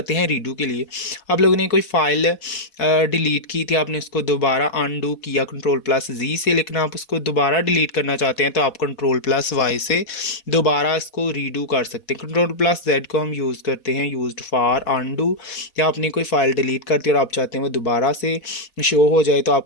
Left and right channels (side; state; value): right; late; 4.2 ms